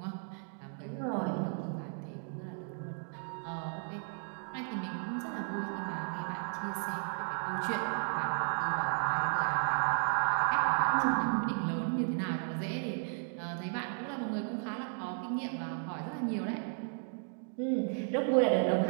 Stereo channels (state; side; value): silent; left; 55 dB below the other